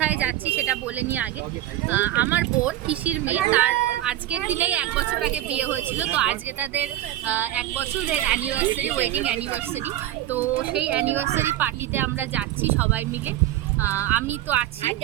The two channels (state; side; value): quieter; left; 13.8 dB